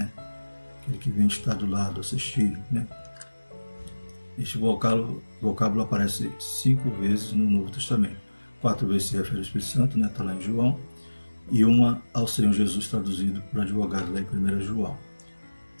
Aquele que vem estar do lado, assistir, né? Este vocábulo aparece 5 vezes no Novo Testamento. 4 vezes se refere ao Espírito Santo, né? Está lá em João, e uma ao Senhor Jesus traduzido por advogado lá em 1 João.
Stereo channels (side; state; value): both; inverted; correlation -1.00